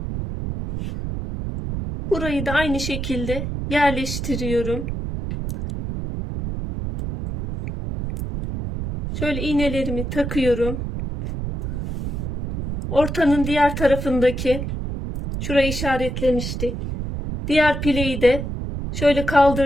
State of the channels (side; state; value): right; noise; rumble, 4 dB below the sound